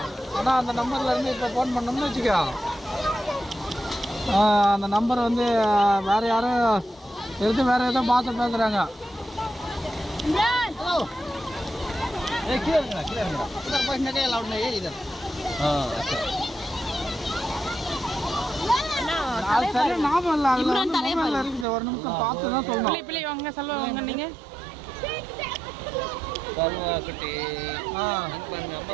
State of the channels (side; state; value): left; drops out; at 21.7 s